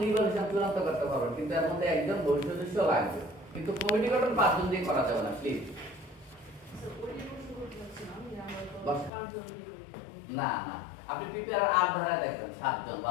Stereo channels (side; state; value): right; drops out; at 9.1 s